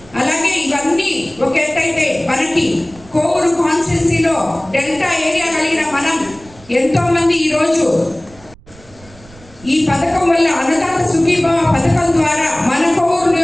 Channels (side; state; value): right; noise; rumble, 23 dB below the sound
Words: అలాగే ఇవన్నీ ఒక ఎత్తైతే మనకి కోవూరు కాన్స్టిట్యున్సీలో డెల్టా ఏరియా కలిగిన మనం ఎంతో మంది ఈరోజు ఈ పథకం వల్ల అన్నదాత సుఖీభవ పథకం ద్వారా మన కోవూరు